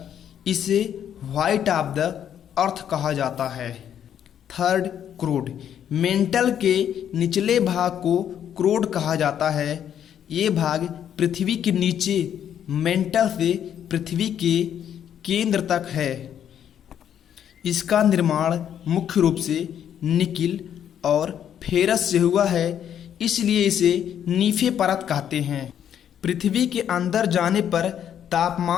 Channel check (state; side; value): quieter; right; 9.5 dB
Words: इसे व्हाइट ऑफ द अर्थ कहा जाता है। थर्ड क्रोड, मेंटल के निचले भाग को क्रोड कहा जाता है। ये भाग पृथ्वी के नीचे मेंटल से पृथ्वी के केंद्र तक है। इसका निर्माण मुख्य रूप से निकिल और फेरस से हुआ है, इसलिए इसे नीफे परत कहते हैं। पृथ्वी के अंदर जाने पर